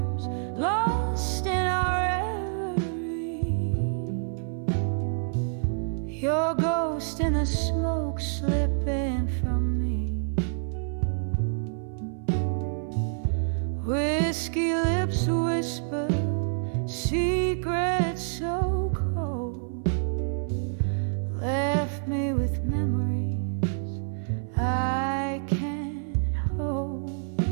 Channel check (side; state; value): left; silent; 57 dB below the other